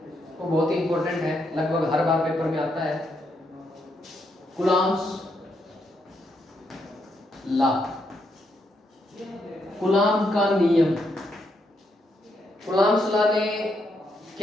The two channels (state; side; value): normal; both; correlation 0.78